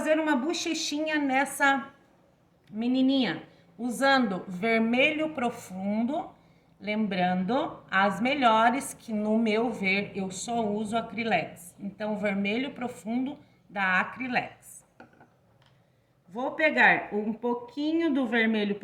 uma bochechinha nessa menininha, usando vermelho profundo, lembrando as melhores que no meu ver eu só uso Acrylex. Então, vermelho profundo da Acrylex. Vou pegar um pouquinho do vermelho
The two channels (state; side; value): identical; both; correlation 1.00